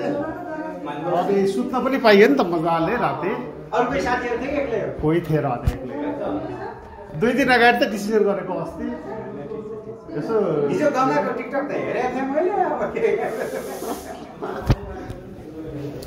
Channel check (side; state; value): both; identical; correlation 1.00